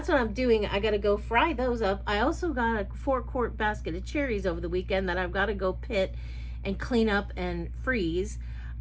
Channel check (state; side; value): identical; both; correlation 1.00